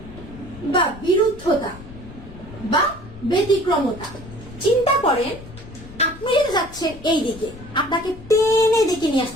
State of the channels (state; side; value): noise; left; rumble, 16 dB below the sound